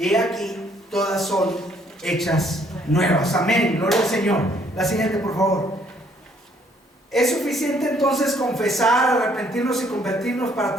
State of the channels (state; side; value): normal; both; correlation 0.65